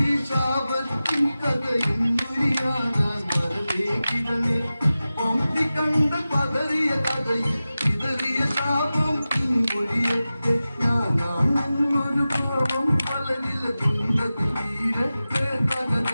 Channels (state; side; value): inverted; both; correlation -0.95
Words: ശാപത്തിൻ കഥയും മുരിയാനാൻ വരവേ കിരണേ പമ്പി കണ്ട പതറിയ കഥയിൽ ഇതറിയ ശാപം ഇൻമൊഴിയത്തെ ഞാനാണെന്നൊരു ഭാവം പലരില കുണ്ടത്തിൽ വീരത്തെ